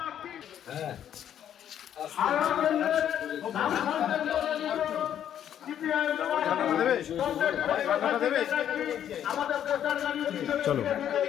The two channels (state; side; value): quieter; right; 10.0 dB